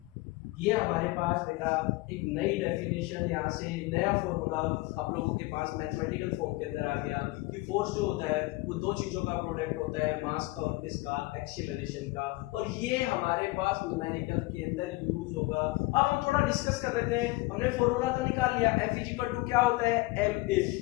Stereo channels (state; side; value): quieter; right; 21.4 dB